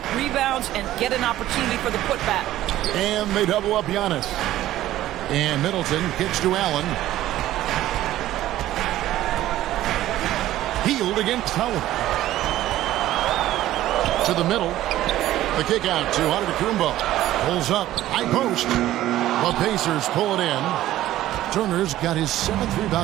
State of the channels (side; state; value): left; quieter; 14.2 dB